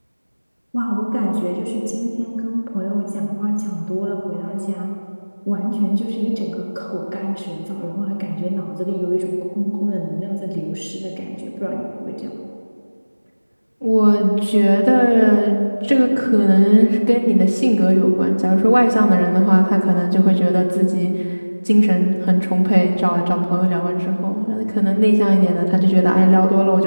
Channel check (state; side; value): inverted; both; correlation -1.00